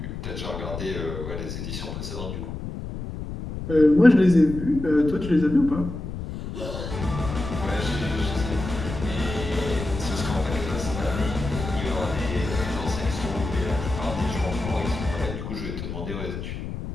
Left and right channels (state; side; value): noise; left; rumble, 7 dB below the sound